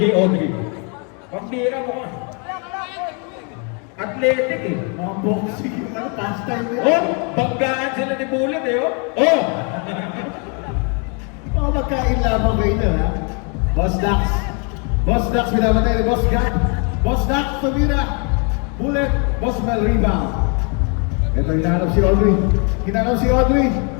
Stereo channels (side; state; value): right; quieter; 36.5 dB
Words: Audrey? Pambira mo ka. Athletic eh. Mga boxing, pastime nila. Oh, banggaan sila ni Bullet eh, oh. Oh! Mga magkain lamang kayo na, ha? Boss Dax, binabatay ni Boss Gap. Boss Dax, tumira. Bullet, Boss Mel, rebound. Ito, hinahanap si Audrey.